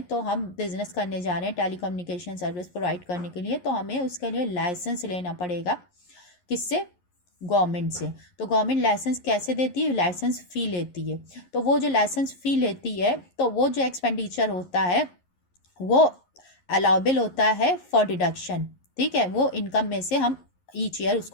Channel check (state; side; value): late; right; 11 ms